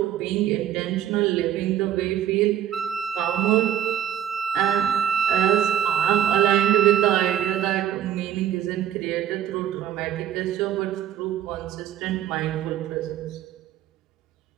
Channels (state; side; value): quieter; left; 10.5 dB